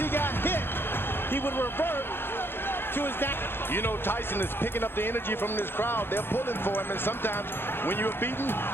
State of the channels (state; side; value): late; right; 0.11 ms